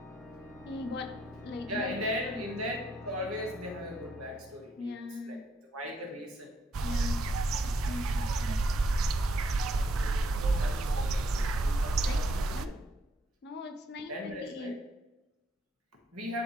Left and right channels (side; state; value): both; normal; correlation 0.73